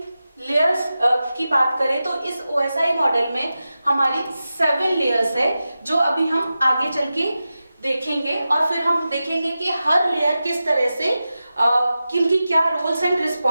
लेयर्स की बात करें तो इस OSI मॉडल में हमारी 7 लेयर्स है जो अभी हम आगे चल के देखेंगे, और फिर हम देखेंगे कि हर लेयर किस तरह से किनकी क्या रोल्स एंड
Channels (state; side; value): inverted; both; correlation -0.93